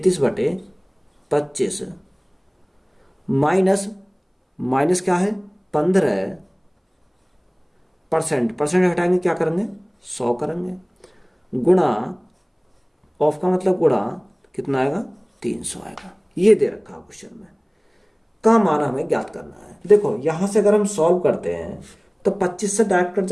माइनस, माइनस क्या है 15%, परसेंट हटाएंगे क्या करेंगे 100 करेंगे, गुणा ऑफ का मतलब गुणा कितना आएगा 300 आएगा। ये दे रखा क्वेश्चन में, का मान हमें ज्ञात करना है। देखो यहां से अगर हम सॉल्व करते हैं तो 25 से डायरेक्ट कट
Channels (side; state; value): both; identical; correlation 1.00